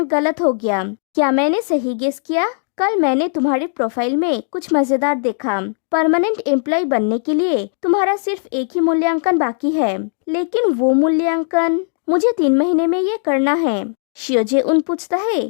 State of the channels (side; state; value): right; silent; digital silence